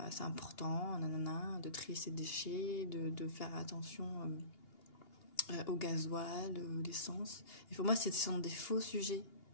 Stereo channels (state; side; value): late; right; 2.8 ms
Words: c'est important, nanana, de trier ses déchets, de faire attention au gasoil, l'essence. Et pour moi, ce sont des faux sujets.